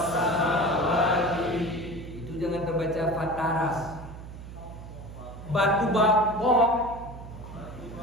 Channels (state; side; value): noise; right; hum, 13 dB below the sound